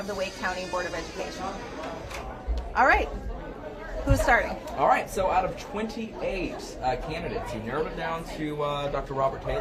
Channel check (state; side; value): identical; both; correlation 1.00